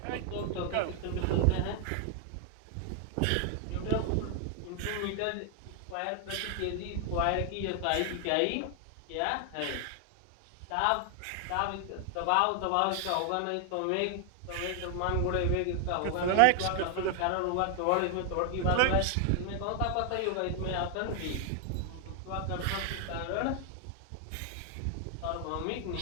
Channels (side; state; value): both; different; correlation 0.00